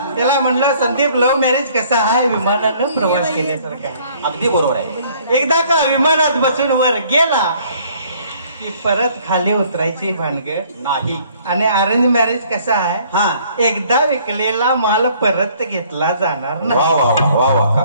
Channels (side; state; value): both; inverted; correlation -0.59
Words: त्याला म्हणलं संदीप लव्ह मॅरेज कसा आहे विमानानं प्रवास केल्यासारखा. अगदी बरोबर आहे. एकदा का विमानात बसून वर गेला की परत खाली उतरायची भानगड नाही. आणि अरेंज मॅरेज कसा आहे हा एकदा विकलेला माल परत घेतला जाणार वा नाही. वा वा